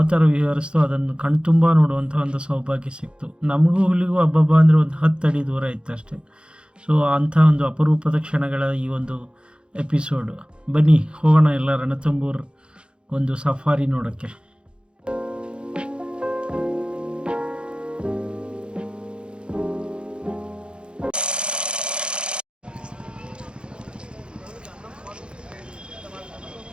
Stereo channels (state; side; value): late; left; 0.054 ms